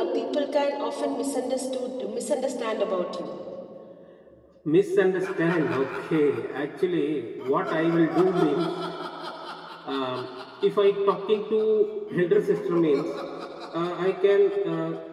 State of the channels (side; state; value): both; identical; correlation 1.00